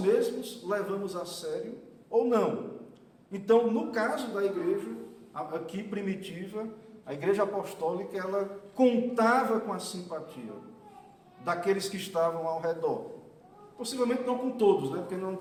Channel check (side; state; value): both; identical; correlation 1.00